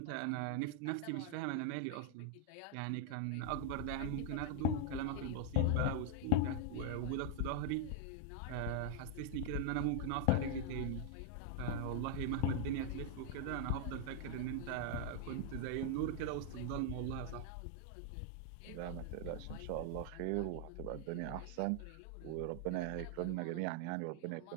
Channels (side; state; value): both; different; correlation 0.00